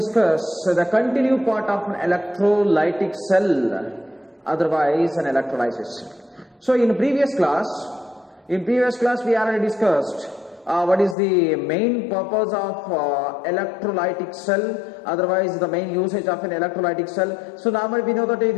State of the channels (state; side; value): drops out; right; at 11.2 s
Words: the continued part of an electrolytic cell, otherwise an electrolysis. So in previous class we already discussed what is the main purpose of electrolytic cell, otherwise the main usage of an electrolytic cell. So normally we know that